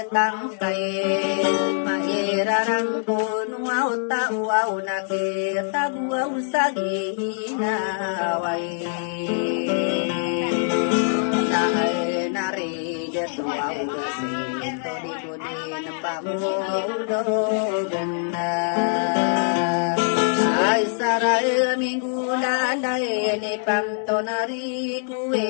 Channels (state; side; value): silent; right; digital silence